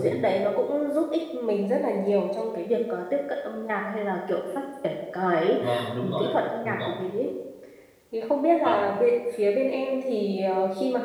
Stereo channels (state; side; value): identical; both; correlation 1.00